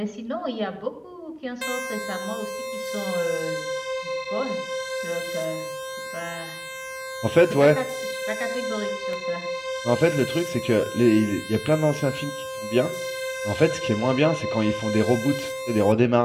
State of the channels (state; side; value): identical; both; correlation 1.00